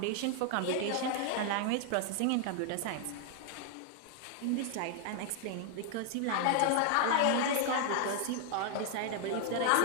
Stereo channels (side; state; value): both; different; correlation 0.00